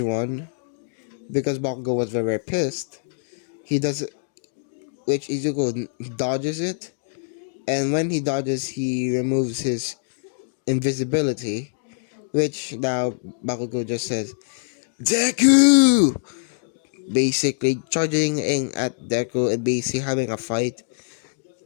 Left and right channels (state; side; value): silent; right; digital silence